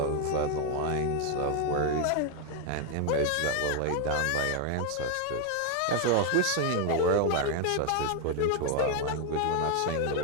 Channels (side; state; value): both; different; correlation 0.01